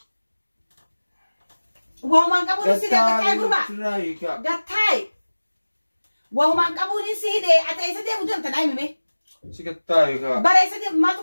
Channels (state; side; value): inverted; both; correlation -1.00